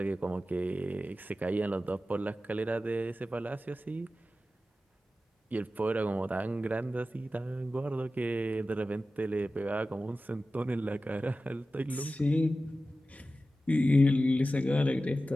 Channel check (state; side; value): normal; both; correlation 0.94